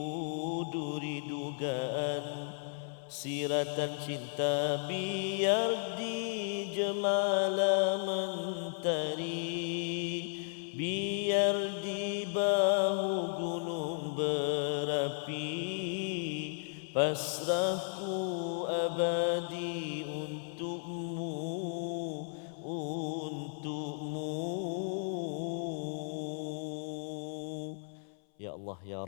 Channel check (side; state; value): right; silent; 55 dB below the other